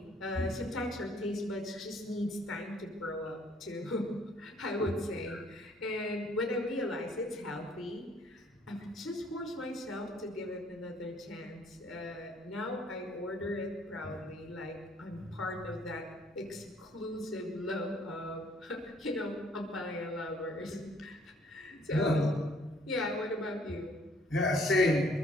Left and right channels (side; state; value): both; normal; correlation 0.61